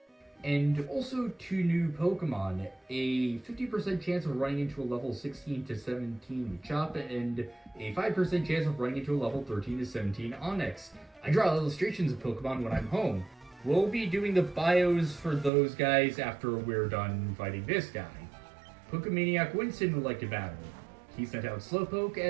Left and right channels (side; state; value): left; drops out; at 15.5 s